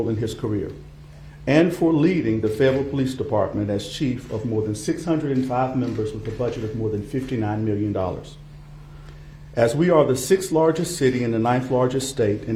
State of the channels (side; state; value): both; identical; correlation 1.00